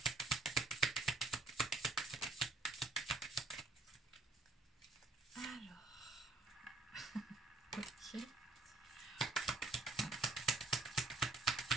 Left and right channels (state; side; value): quieter; left; 3.5 dB